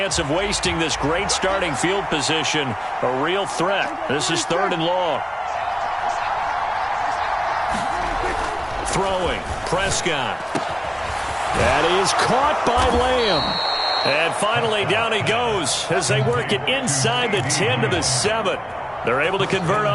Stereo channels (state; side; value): identical; both; correlation 1.00